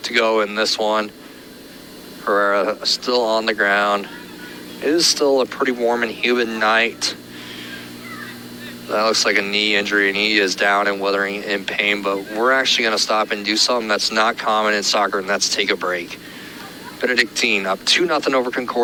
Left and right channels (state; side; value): identical; both; correlation 1.00